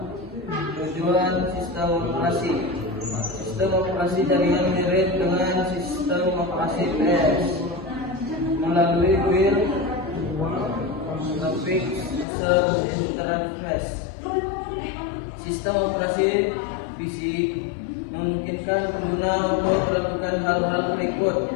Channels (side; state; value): right; drops out; at 12.2 s